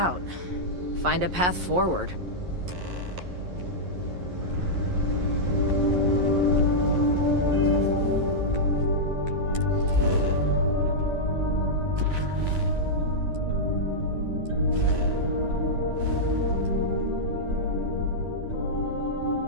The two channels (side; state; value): left; late; 11 ms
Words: Find a path forward.